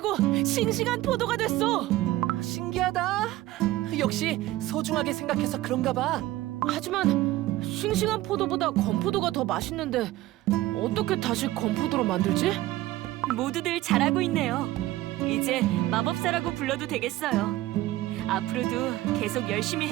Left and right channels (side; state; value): left; quieter; 16.5 dB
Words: 싱싱한 포도가 됐어. 신기하다. 역시 소중하게 생각해서 그런가 봐. 하지만 싱싱한 포도보다 건포도가 더 맛있는데 어떻게 다시 건포도로 만들지? 모두들 잘하고 있네요. 이제 마법사라고 불러도 되겠어요. 앞으로도 계속 열심히